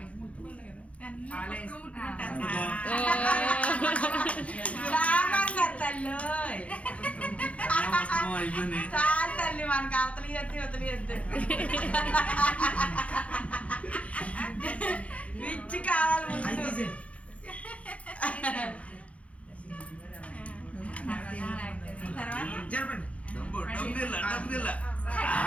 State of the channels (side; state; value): right; late; 0.064 ms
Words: తల్లి తల్లి మనకి అవతలి ఎత్తి వదిలి ఎద్దు విచ్చి కావాలి ముందు.